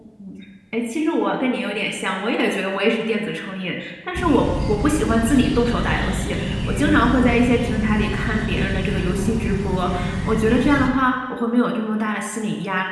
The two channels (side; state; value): both; identical; correlation 1.00